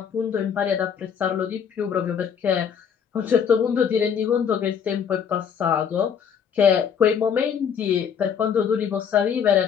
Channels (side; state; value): right; quieter; 7.5 dB